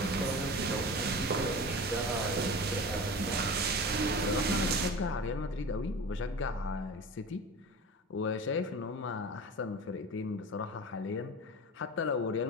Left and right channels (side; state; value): both; normal; correlation 0.33